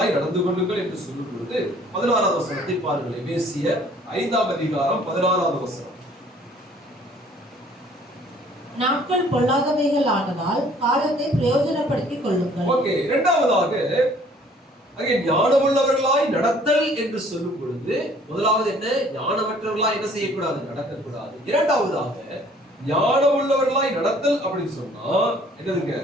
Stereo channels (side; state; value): both; normal; correlation 0.57